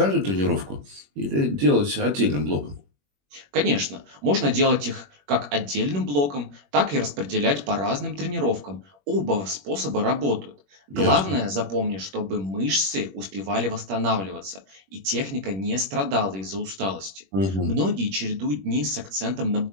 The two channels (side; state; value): left; late; 21 ms